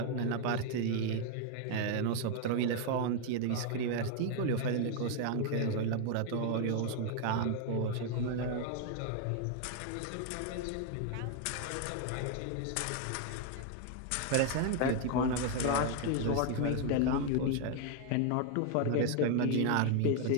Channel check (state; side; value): different; both; correlation 0.00